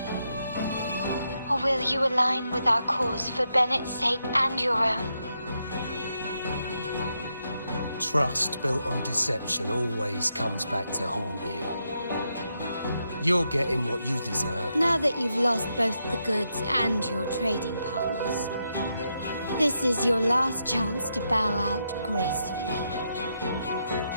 Or will you align with our cause for Bennett's sake and your own? Trust built on deception always comes back to haunt you. You're getting what you deserve. Now that you've lost both the goods and your trading partners, this is your last chance to bow out gracefully.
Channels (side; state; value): both; inverted; correlation -0.82